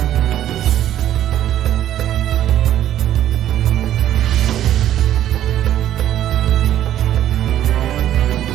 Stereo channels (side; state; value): left; quieter; 11.8 dB